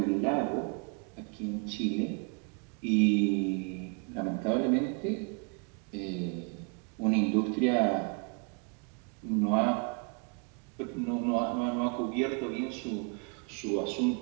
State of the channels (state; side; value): quieter; left; 36.3 dB